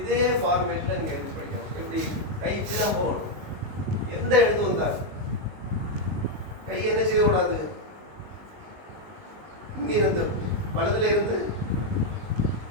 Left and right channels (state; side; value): late; left; 19 ms